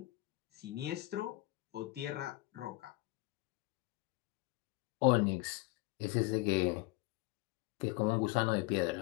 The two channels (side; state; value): right; quieter; 20.8 dB